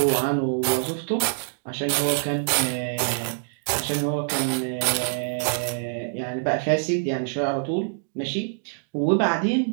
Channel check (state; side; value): silent; left; digital silence